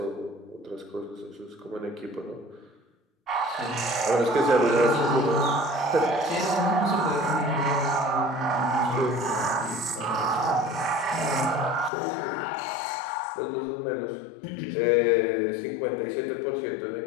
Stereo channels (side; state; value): right; drops out; at 11.9 s